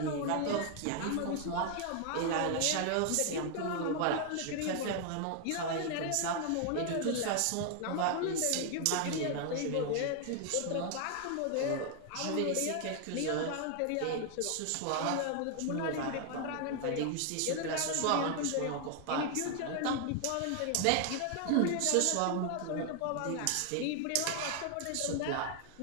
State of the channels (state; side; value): different; both; correlation 0.00